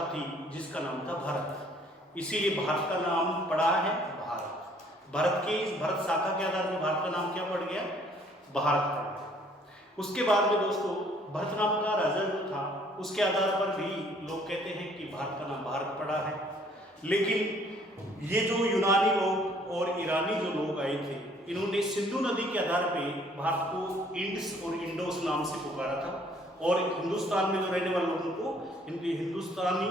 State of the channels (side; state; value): both; normal; correlation 0.60